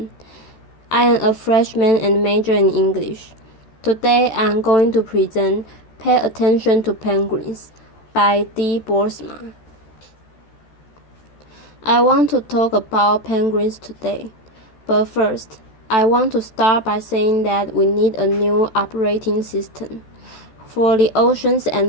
I am a freshman and major in English. Today, I am going to present Pay Attention to Penguins by Boersma. I want to talk about penguins today, but first, I want to start by saying that we need a new operating system for the oceans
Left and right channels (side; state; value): right; late; 14 ms